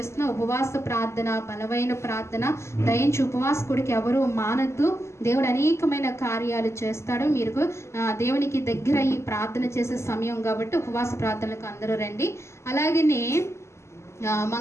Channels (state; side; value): late; right; 0.13 ms